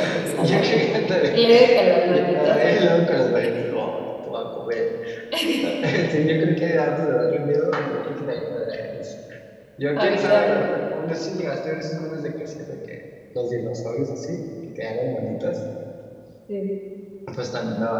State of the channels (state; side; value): identical; both; correlation 1.00